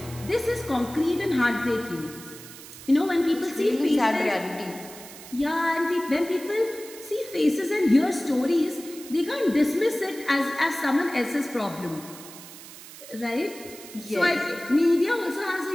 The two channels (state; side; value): noise; right; hiss, 16 dB below the sound